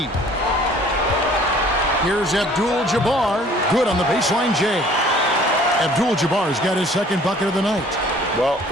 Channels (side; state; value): both; normal; correlation 0.53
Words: Here's Abdul-Jabbar. Good on the baseline J. Abdul-Jabbar's got his second bucket of the night. Well,